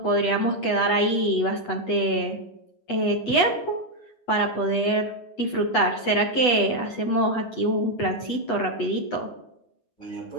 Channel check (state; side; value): late; right; 8.2 ms